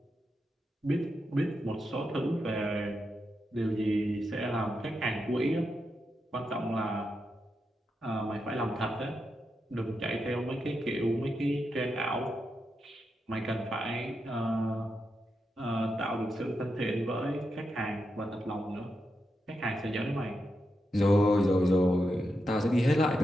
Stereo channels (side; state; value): both; normal; correlation 0.86